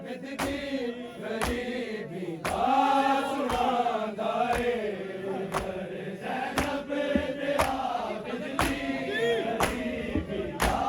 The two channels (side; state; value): both; identical; correlation 1.00